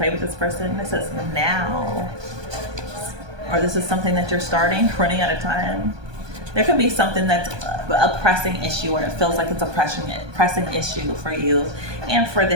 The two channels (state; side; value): late; left; 1.2 ms